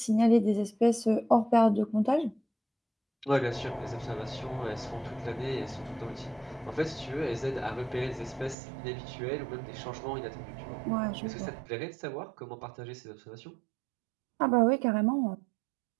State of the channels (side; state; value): left; drops out; at 8.6 s